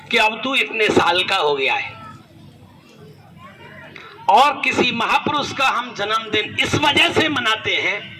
कि अब तू इतने साल का हो गया है, और किसी महापुरुष का हम जन्मदिन इस वजह से मनाते हैं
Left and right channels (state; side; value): identical; both; correlation 1.00